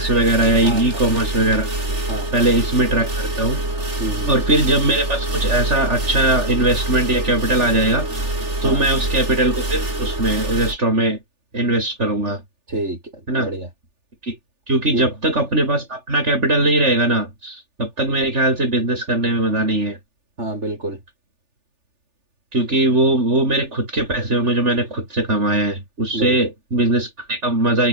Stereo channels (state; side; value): late; left; 3.4 ms